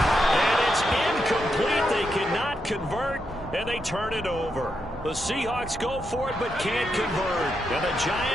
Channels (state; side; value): normal; both; correlation 0.83